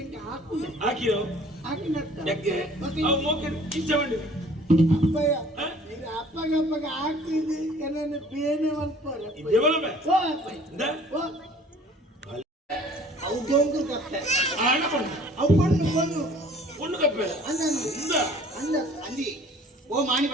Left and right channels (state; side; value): normal; both; correlation 0.52